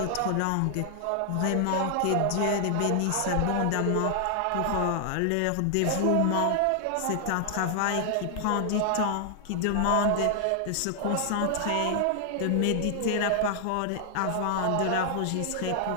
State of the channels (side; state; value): both; different; correlation 0.00